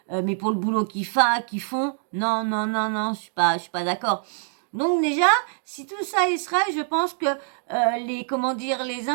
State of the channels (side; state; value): left; silent; digital silence